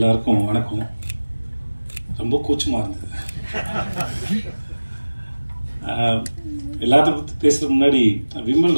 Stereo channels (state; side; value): inverted; both; correlation -1.00